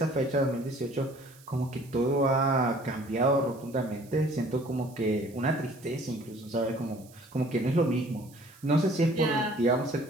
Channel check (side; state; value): right; noise; hiss, 25 dB below the sound